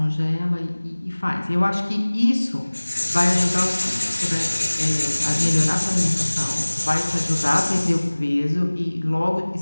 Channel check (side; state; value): both; inverted; correlation -1.00